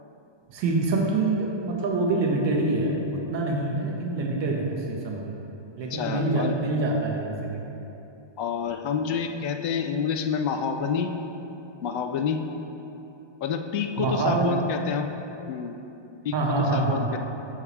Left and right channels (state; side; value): late; left; 1.2 ms